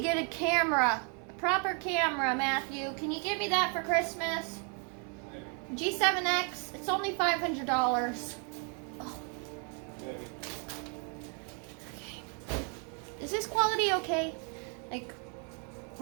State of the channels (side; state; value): left; quieter; 39.1 dB